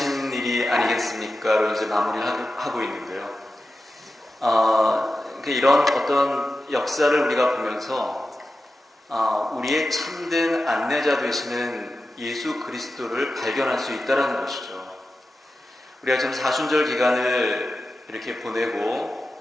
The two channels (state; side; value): normal; both; correlation 0.93